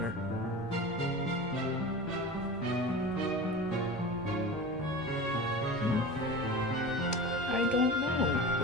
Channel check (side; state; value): left; noise; hum, 22 dB below the sound